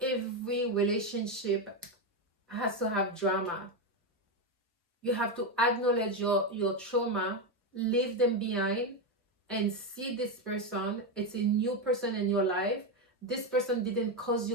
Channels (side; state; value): both; normal; correlation 0.09